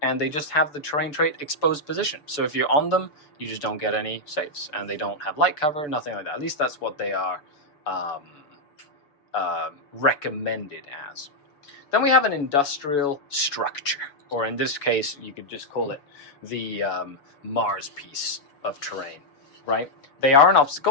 and they just have the terrain trait exposed position. So if you're on them, you just don't get any saves, and they don't have light cover, nothing like that. At least that's what they are recommended as. Then we have an industrial structure, or in this case, you could just call it the Mars piece of terrain, right? They are an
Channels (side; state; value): right; late; 6.8 ms